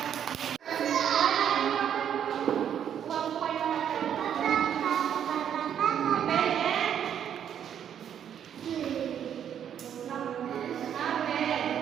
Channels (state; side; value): quieter; left; 9.1 dB